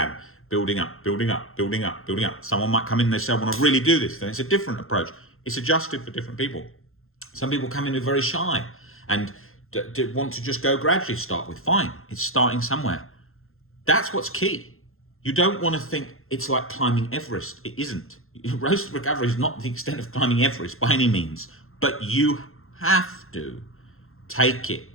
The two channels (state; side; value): late; right; 0.61 ms